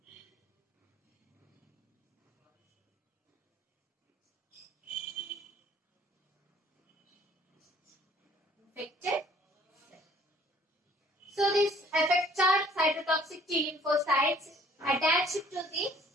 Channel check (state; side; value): normal; both; correlation 0.57